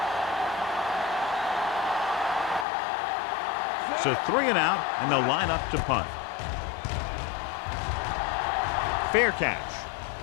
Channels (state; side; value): drops out; right; at 2.7 s